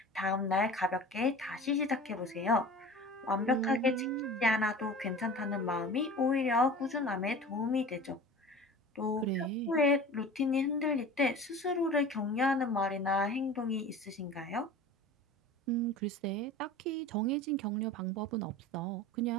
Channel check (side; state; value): both; normal; correlation 0.38